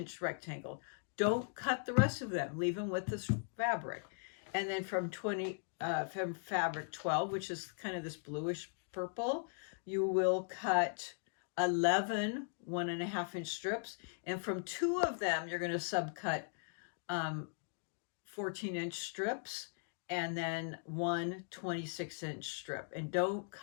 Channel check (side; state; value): right; silent; digital silence